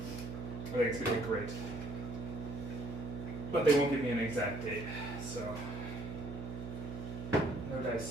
think it's going to be great. But they won't give me an exact date, so no dice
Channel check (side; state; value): right; noise; hum, 7 dB below the sound